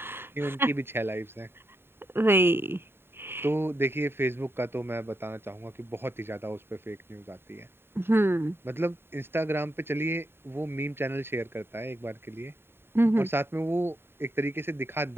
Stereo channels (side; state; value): left; late; 0.11 ms